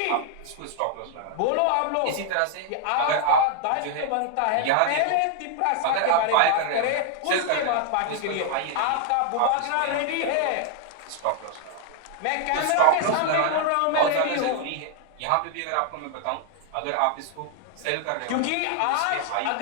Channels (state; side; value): different; both; correlation 0.00